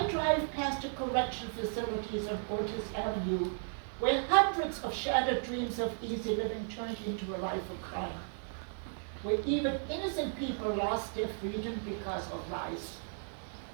drive past the correction facilities on Ortiz Avenue, where hundreds of shattered dreams of easy living turned into a life of crime, where even innocent people lost their freedom because of lies.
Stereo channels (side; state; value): left; silent; digital silence